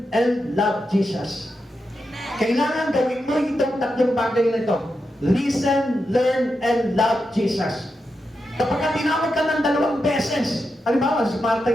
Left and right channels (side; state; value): both; normal; correlation 0.87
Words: and love Jesus. Kailangan gawin mo itong 3 bagay na ito. Listen, learn, and love Jesus. Kapag tinawag ka ng 2 beses, halimbawa, si Marta